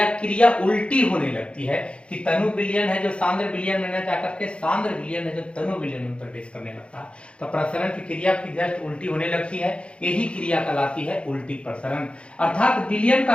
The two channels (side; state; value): right; late; 0.058 ms